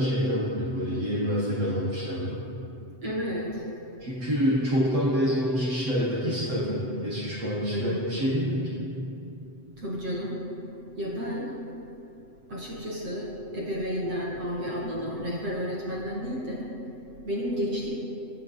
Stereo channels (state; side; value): late; left; 7.9 ms